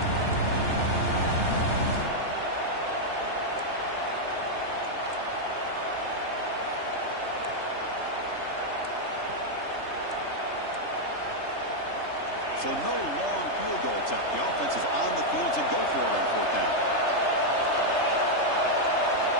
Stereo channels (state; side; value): late; right; 3.3 ms